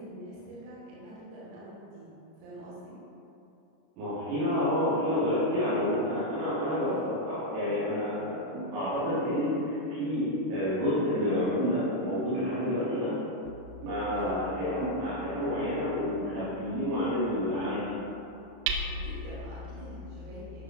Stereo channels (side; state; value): left; late; 32 ms